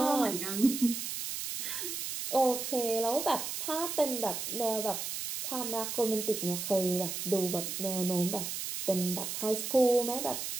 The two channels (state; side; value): noise; right; hiss, 4 dB below the sound